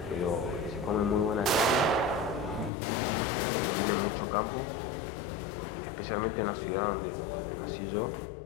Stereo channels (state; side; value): drops out; right; at 2.7 s